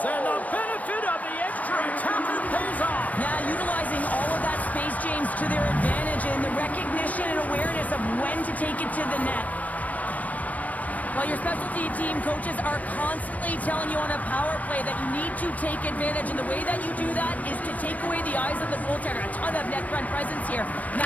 And the benefit of the extra attacker pays off. Yeah, utilizing all of that space, James, to their advantage and the recognition and awareness of when to take it to the net. Well, your specialty team coaches are constantly telling you on a power play that you need to take advantage, and the way that you do that is to take away the eyes of the goaltender. A ton of net front presence here, and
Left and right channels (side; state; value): right; late; 0.075 ms